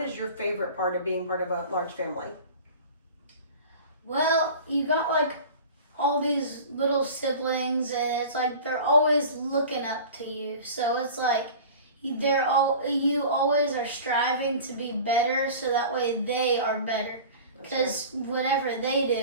your favorite part of being part of a large family? Well, you got like all these little siblings, and it's like they're always looking up to you. So it's like you always are striving to be better, so that way they are better. Because whatever they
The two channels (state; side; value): inverted; both; correlation -0.39